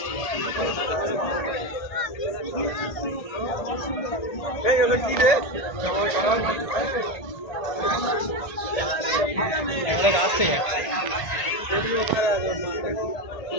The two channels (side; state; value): right; late; 1.8 ms